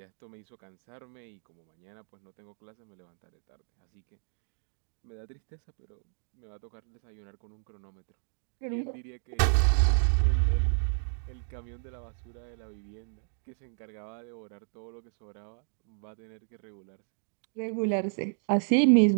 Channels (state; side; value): silent; left; digital silence